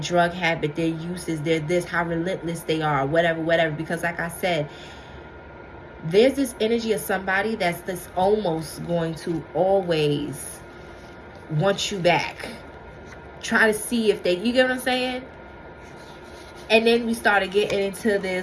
habit, their uses, their this, how relentless they are, whatever. Because like I said, there's this energy of somebody that's this almost going to always want you back. Try to see if they, you get what I'm saying? And then we started getting into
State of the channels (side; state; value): both; identical; correlation 1.00